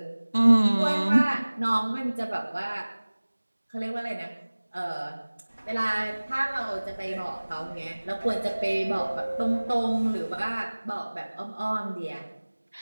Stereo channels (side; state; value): both; inverted; correlation -1.00